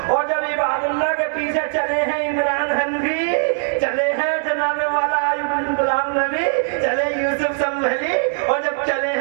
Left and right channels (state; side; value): silent; left; digital silence